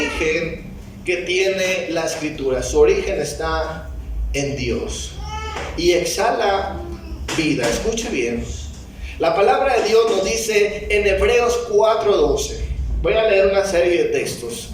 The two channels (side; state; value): both; identical; correlation 1.00